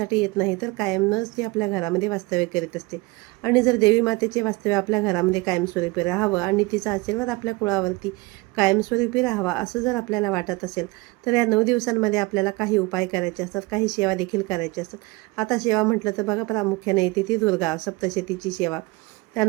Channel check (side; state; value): left; quieter; 23.3 dB